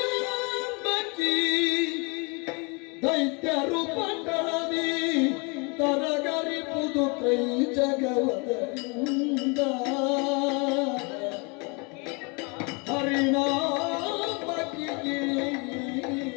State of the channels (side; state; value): right; quieter; 31.4 dB